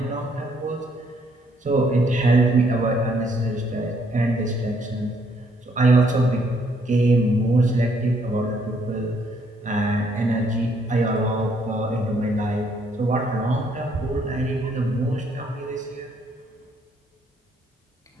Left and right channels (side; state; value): both; normal; correlation 0.69